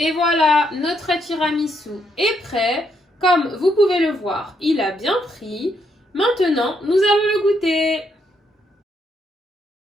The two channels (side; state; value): both; normal; correlation 0.76